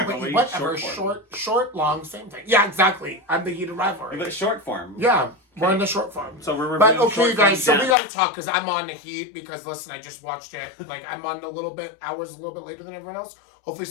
but whatever. short Short, long, same thing. Yeah, exactly. I'm the heated rivalry. But short form. Yeah, we're in the short form. So we're But reviewing okay, short guys, form so we dance. got to talk because I'm on the heat because, listen, I just watched it. Like, I'm on hours a little bit later than everyone else. Hopefully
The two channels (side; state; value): right; drops out; at 8.0 s